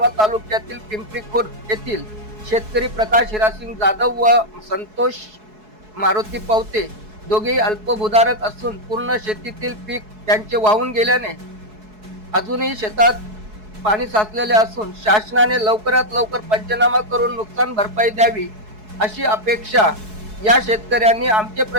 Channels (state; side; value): late; left; 4.7 ms